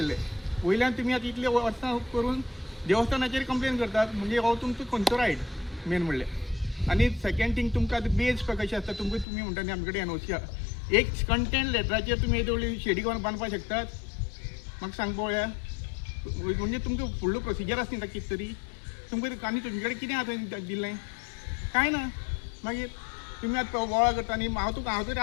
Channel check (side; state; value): right; drops out; at 9.2 s